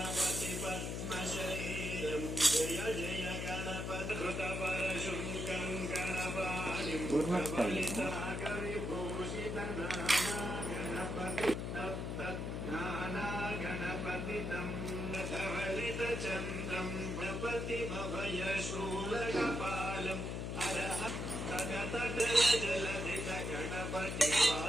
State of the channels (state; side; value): noise; left; hum, 3 dB below the sound